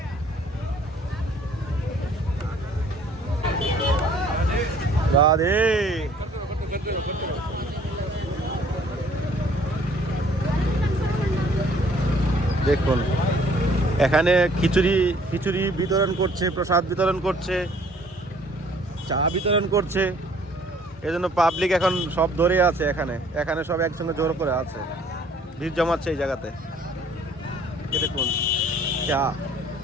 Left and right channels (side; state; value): both; normal; correlation 0.58